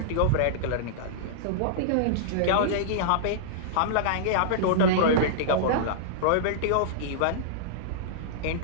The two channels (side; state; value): both; different; correlation -0.02